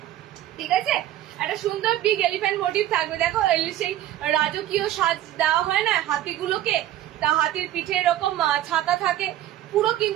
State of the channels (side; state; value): left; quieter; 13.1 dB